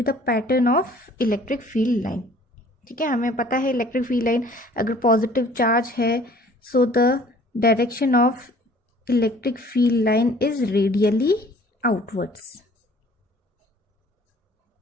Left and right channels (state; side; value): normal; both; correlation 0.53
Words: the pattern of electric field line? ठीक है, हमें पता है इलेक्ट्रिक फील्ड लाइन अगर पॉजिटिव चार्ज है, so the direction of electric field line is radially outwards.